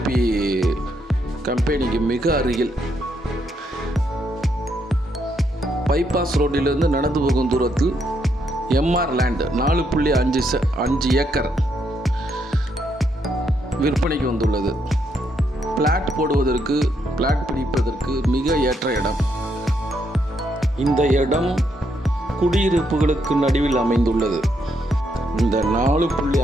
கம்பெனிக்கு மிக அருகில் பைபாஸ் ரோட்டிலிருந்து நடந்து போகும் தூரத்தில் எம்ஆர் லேண்ட் 4.5 ஏக்கர் விற்பனைக்கு வந்துள்ளது. பிளாட் போடுவதற்கு, பிளாட் பிடிப்பதற்கு மிக ஏற்ற இடம். இந்த இடம் குடியிருப்புகளுக்கு நடுவில் அமைந்துள்ளது. இந்த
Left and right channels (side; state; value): both; normal; correlation 0.76